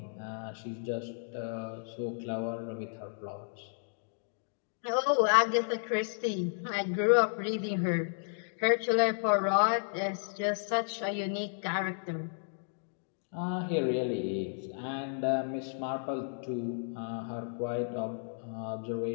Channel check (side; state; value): right; silent; digital silence